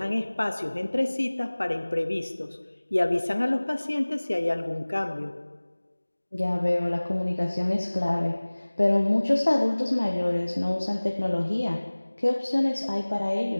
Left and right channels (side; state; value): both; inverted; correlation -1.00